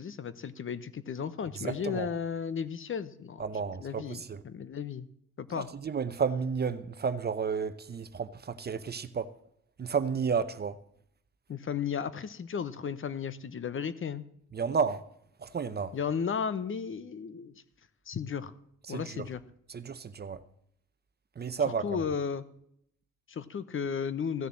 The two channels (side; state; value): both; normal; correlation 0.14